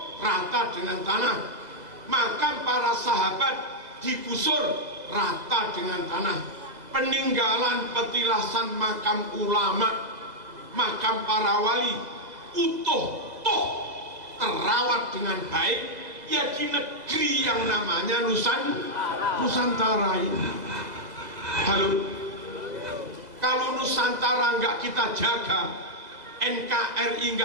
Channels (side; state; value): left; late; 2.0 ms